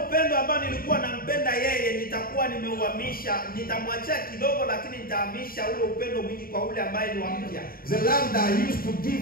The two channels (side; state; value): right; late; 0.43 ms